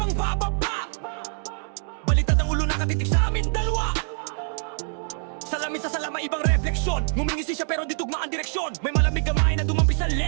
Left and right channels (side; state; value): left; silent; digital silence